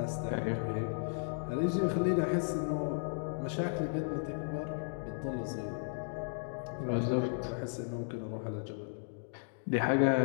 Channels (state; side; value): silent; right; digital silence